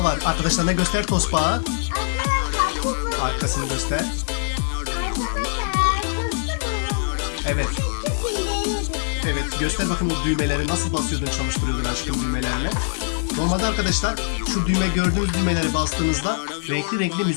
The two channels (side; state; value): right; silent; 64 dB below the other